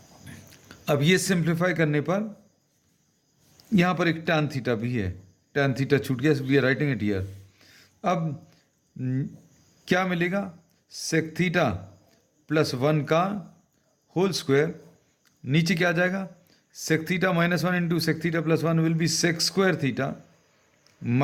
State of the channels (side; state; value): both; identical; correlation 1.00